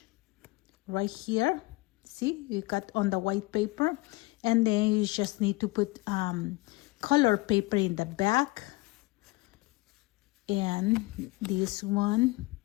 Right here, see, you cut on the white paper, and then you just need to put color paper in the back, and this one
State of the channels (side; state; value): right; quieter; 22.6 dB